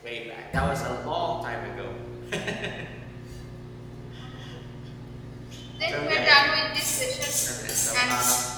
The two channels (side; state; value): both; identical; correlation 1.00